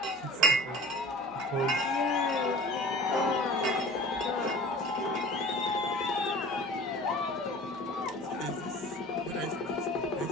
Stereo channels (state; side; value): noise; right; hum, 28 dB below the sound